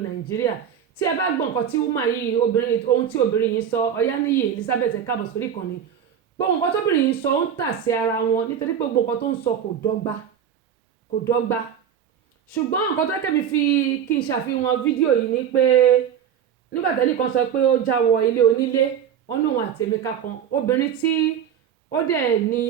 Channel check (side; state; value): left; quieter; 8.7 dB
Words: Nàìjíríà tí ẹ bá gbọ́ nǹkan tí woman yìí ohun tí obìnrin yìí sọ Ọ̀yáníyì Elizabeth ẹ káàbọ̀ sórí ìkànnì gbogbo nǹkan tóbìnrin yìí sọ ó ń tà sí ara wọn nítorí pé gbogbo nǹkan tó ń sọ kò dọ́gba ṣùgbọ́n nǹkan tó kẹ́mi fi kí n ṣàfihàn fídíò yìí ni pé nígbà tẹ́lẹ̀ kan sọ pé ó já wọ ilé onílé wọn ní òun àti Emeka kan obìnrin tí ó dẹ̀ ní